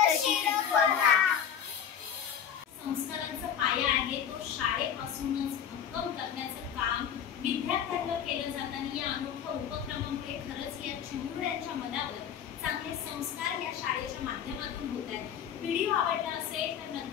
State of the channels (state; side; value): quieter; right; 8.6 dB